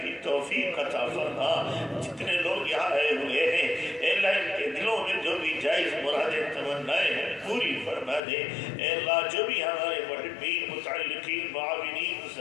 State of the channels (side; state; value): right; drops out; at 8.2 s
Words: کی توفیق عطا فرما۔ جتنے لوگ یہاں آئے ہوئے ہیں اے اللہ ان کے دلوں میں جو بھی جائز مرادیں تمنائیں ہیں پوری فرما دے۔ اے اللہ جو بھی ہمارے محبین متعلقین معاونین